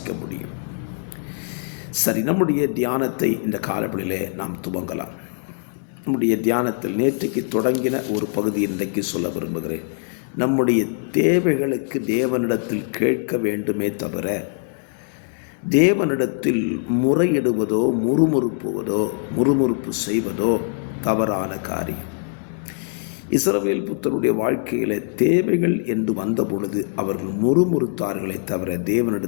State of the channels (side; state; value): right; silent; 64 dB below the other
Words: முடியும். சரி, நம்முடைய தியானத்தை இந்த காலப்படியிலே நாம் துவங்கலாம். நம்முடைய தியானத்தில் நேற்றைக்கு தொடங்கின ஒரு பகுதி இன்றைக்கு சொல்ல விரும்புகிறேன். நம்முடைய தேவைகளுக்கு தேவனிடத்தில் கேட்க வேண்டுமே தவிர தேவனிடத்தில் முறையிடுவதோ முறுமுறுப்பு செய்வதோ தவறான காரியம். இஸ்ரவேல் புத்தருடைய வாழ்க்கையில் தேவைகள் என்று வந்த பொழுது அவர்கள் முறுமுறுத்தார்களே தவிர